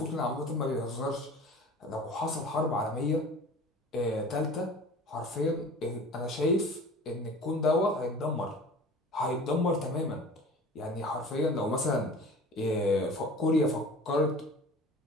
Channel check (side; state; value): both; normal; correlation 0.41